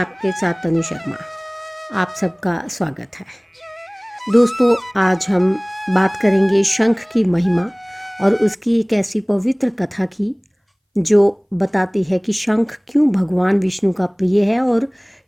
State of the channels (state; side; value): identical; both; correlation 1.00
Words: साथ तनु शर्मा। आप सबका स्वागत है। दोस्तों, आज हम बात करेंगे शंख की महिमा और उसकी एक ऐसी पवित्र कथा की जो बताती है कि शंख क्यों भगवान विष्णु का प्रिय है और